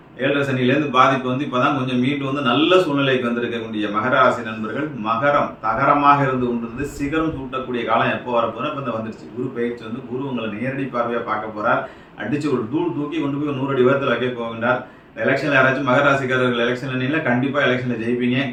7.5 சனியிலேருந்து பாதிப்பு இப்போதான் கொஞ்சம் மீண்டு நல்ல சூழ்நிலைக்கு வந்திருக்கக்கூடிய மகர ராசி நண்பர்கள், மகரம் தகரமாக இருந்து கொண்டிருந்து சிகரம் சூட்டக்கூடிய காலம் எப்போ வரப்போனா இப்போ வந்துருச்சு. குரு பயிற்சி குரு உங்களை நேரடி பார்வையாக பார்க்க போறார். அடிச்சு ஒரு தூக்கி கொண்டு போய் 100 அடி உயரத்தில் வைக்க போகின்றார். எலெக்ஷன்ல யாராச்சும் மகர ராசிக்காரர்கள் எலெக்ஷன்ல கண்டிப்பா எலெக்ஷன்ல ஜெயிப்பீங்க.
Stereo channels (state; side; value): identical; both; correlation 1.00